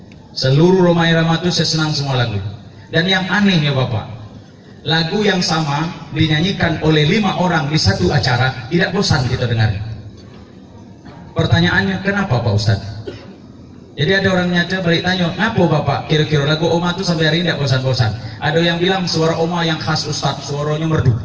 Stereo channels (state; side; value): identical; both; correlation 1.00